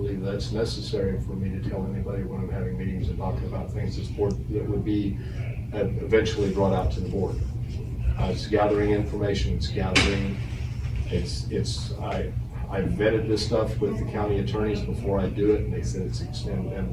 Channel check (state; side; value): identical; both; correlation 1.00